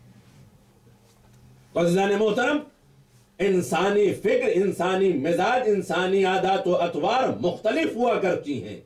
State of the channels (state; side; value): identical; both; correlation 1.00